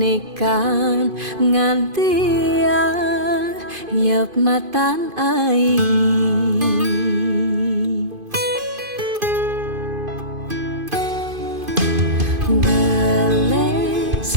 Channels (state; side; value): late; left; 2.5 ms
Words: ngantia yep matan ai. Beles